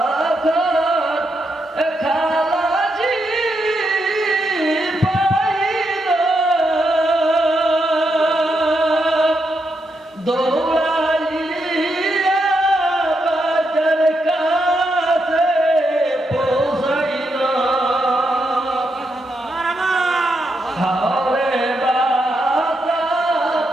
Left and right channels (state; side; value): normal; both; correlation 0.81